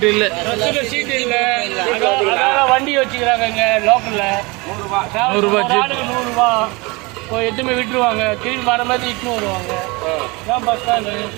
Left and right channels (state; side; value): quieter; left; 25.7 dB